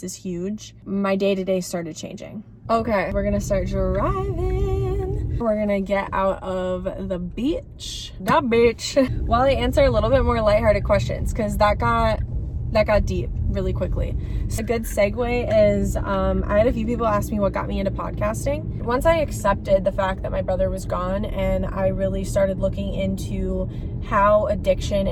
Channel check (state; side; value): identical; both; correlation 1.00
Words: is huge. My day-to-day started changing. Okay, we're gonna start driving. We're gonna get out of the beach. While I answer a little bit more lighthearted questions, because that got deep really quickly. So a good segue is, I had a few people ask me what got me into podcasting. Once I accepted the fact that my brother was gone, and I really started looking into how addiction